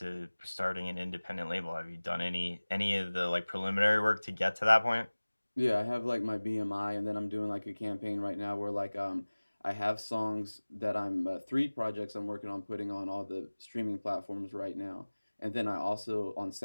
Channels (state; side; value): inverted; both; correlation -1.00